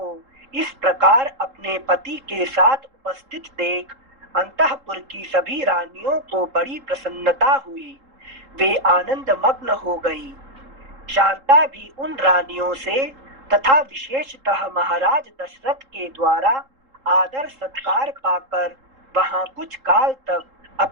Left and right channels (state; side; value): late; left; 3.7 ms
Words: इस प्रकार अपने पति के साथ उपस्थित देख अंतःपुर की सभी रानियों को बड़ी प्रसन्नता हुई। वे आनंद मग्न हो गई। शांता भी उन रानियों से तथा विशेषतः महाराज दशरथ के द्वारा आदर सत्कार पाकर वहां कुछ काल तक